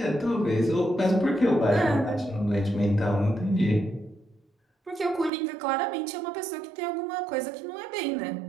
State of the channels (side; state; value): left; drops out; at 5.3 s